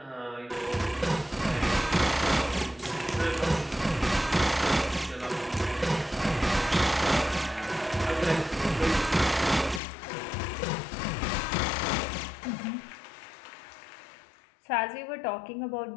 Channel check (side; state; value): right; drops out; at 9.8 s